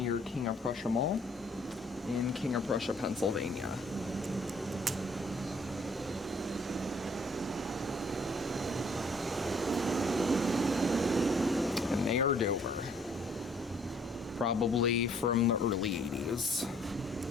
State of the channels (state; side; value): normal; both; correlation 0.61